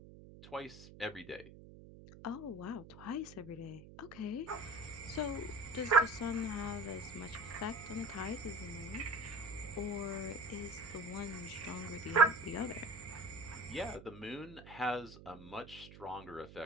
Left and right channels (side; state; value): right; noise; hum, 17 dB below the sound